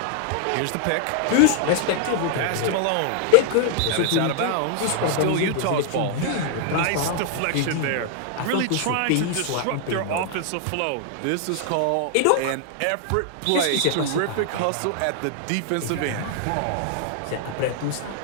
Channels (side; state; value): both; different; correlation 0.00